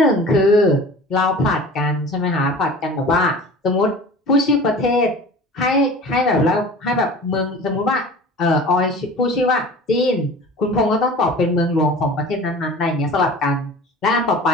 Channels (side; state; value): both; normal; correlation 0.40